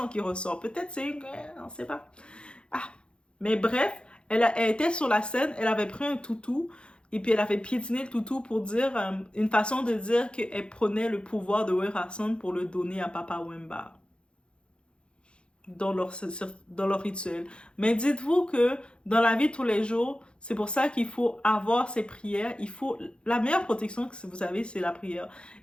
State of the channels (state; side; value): late; right; 0.055 ms